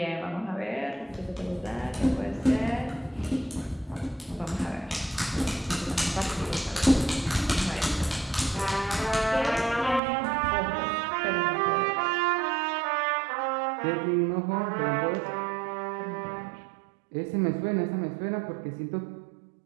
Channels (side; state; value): left; drops out; at 10.0 s